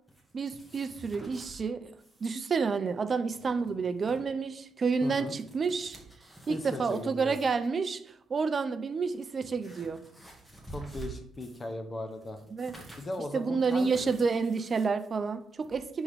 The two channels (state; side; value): quieter; left; 4.2 dB